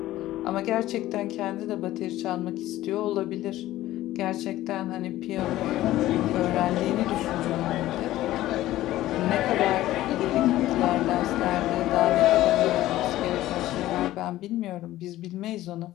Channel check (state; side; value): quieter; right; 15.2 dB